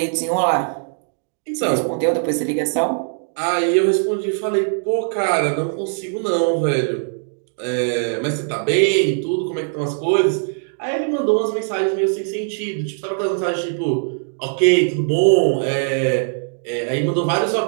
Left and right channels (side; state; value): left; silent; digital silence